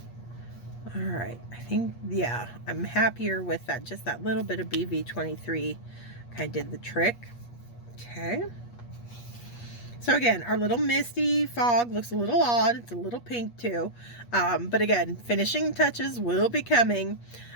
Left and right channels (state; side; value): late; right; 8.4 ms